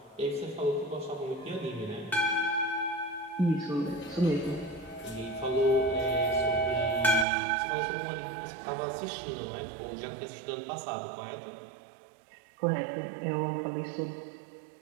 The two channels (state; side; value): drops out; left; at 7.2 s